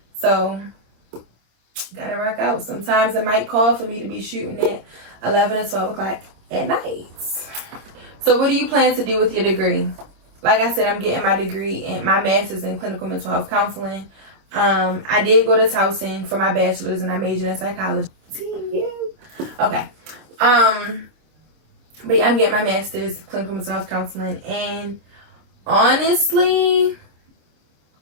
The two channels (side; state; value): left; late; 26 ms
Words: so gotta rock out. Sometimes it might call for me to be shooting at 11 or 12 o'clock at night. So what do you plan to do with your degree? Like I said, I'm getting my degree and my master's in clinical mental health counseling. I did go to Towson for my bachelor's, and I majored in psychology. Okay. But yeah, I'm getting my master's in clinical mental health counseling, and honestly,